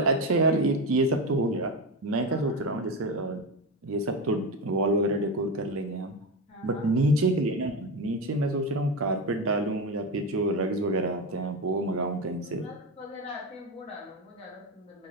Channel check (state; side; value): normal; both; correlation 0.17